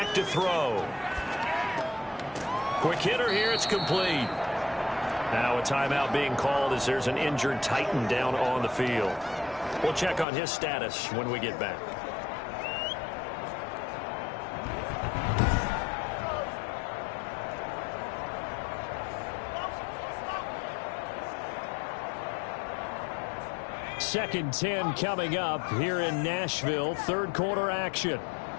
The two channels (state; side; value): drops out; right; at 10.2 s